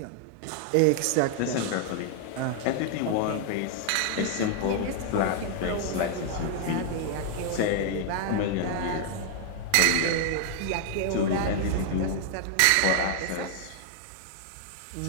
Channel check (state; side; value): different; both; correlation 0.00